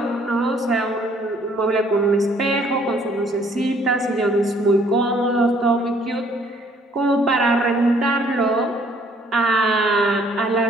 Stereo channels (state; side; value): normal; both; correlation 0.62